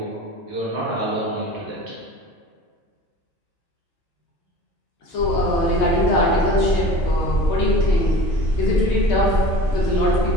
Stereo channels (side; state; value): both; normal; correlation 0.41